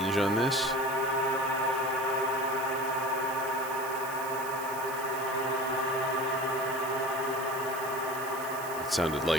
on this. It sounded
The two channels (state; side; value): noise; right; hiss, 12 dB below the sound